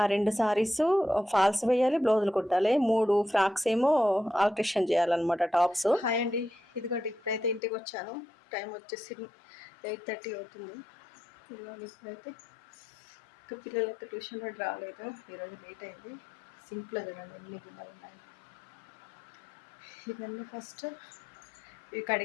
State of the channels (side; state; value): right; drops out; at 7.6 s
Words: 2 సారీస్ ఫాల్స్ వేయాలి, బ్లౌజులు కుట్టాలి. 3 ఫ్రాక్స్ ఏమో ఆల్ట్రేషన్ చేయాలన్నమాట, టాప్స్. హాయ్ అండి, ఇదిగోండి ఇప్పుడైతే ఇంటికి వచ్చాను. టైం వచ్చేసి 8:30 అవుతుంది. ఇప్పుడైతే ఇంకా పిల్లలకి ట్యూషన్ కూడా రాలేదు, ఈరోజు లేట్ అయింది. సింపుల్గా చూడండి ఎన్ని గిన్నెలు ఉన్నాయి. ఇవన్నీ ఫస్ట్ ఇవి